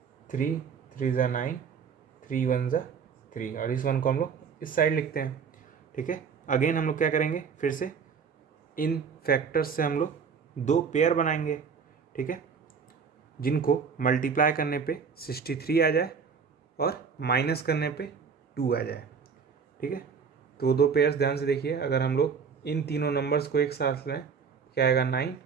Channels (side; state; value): left; quieter; 6.1 dB